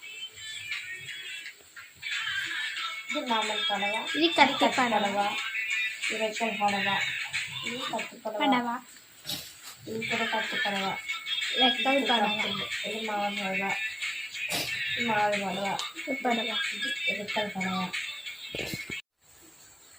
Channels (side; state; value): both; identical; correlation 1.00